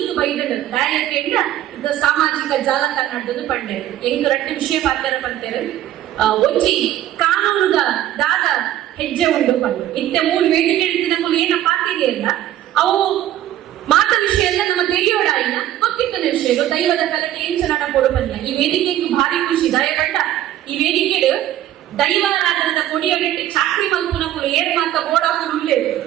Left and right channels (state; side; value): quieter; left; 12.7 dB